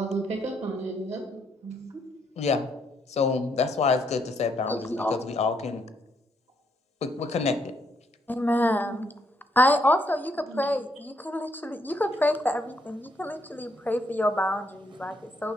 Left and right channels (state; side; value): normal; both; correlation 0.73